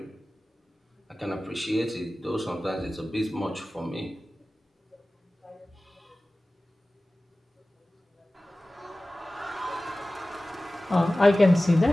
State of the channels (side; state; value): both; normal; correlation 0.97